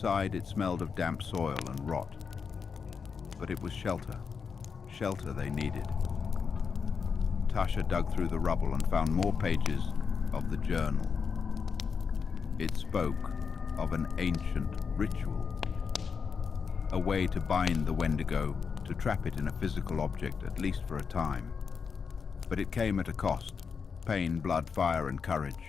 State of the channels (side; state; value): right; quieter; 5.9 dB